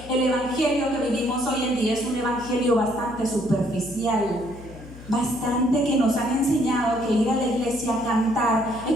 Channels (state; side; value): noise; left; hum, 17 dB below the sound